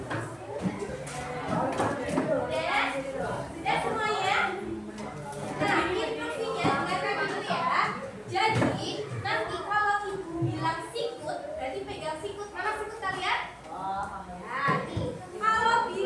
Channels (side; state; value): both; identical; correlation 1.00